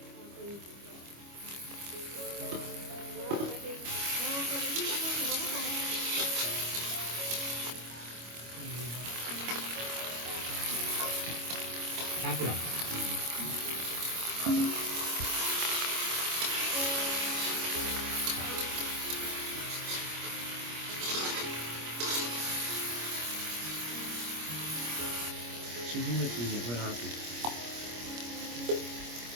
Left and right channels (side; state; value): left; late; 25 ms